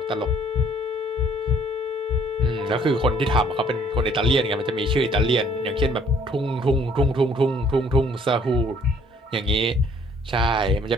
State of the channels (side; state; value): both; normal; correlation 0.61